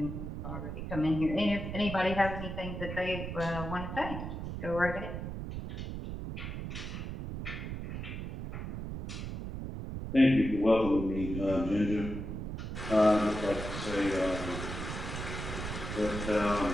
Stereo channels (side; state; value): right; noise; rumble, 6 dB below the sound